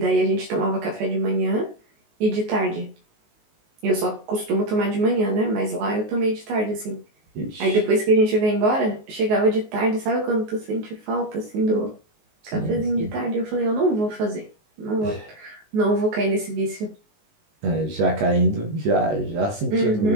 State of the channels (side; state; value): left; late; 19 ms